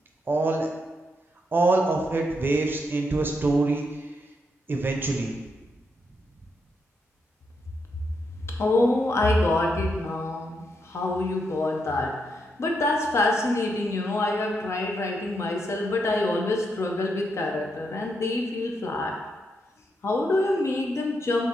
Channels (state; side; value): normal; both; correlation 0.81